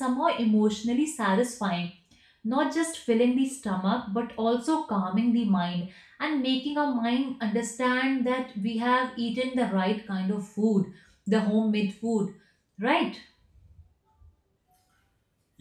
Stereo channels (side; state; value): both; identical; correlation 1.00